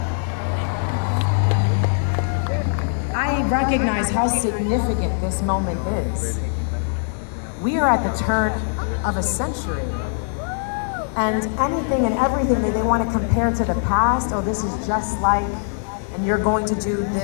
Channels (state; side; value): silent; right; 64 dB below the other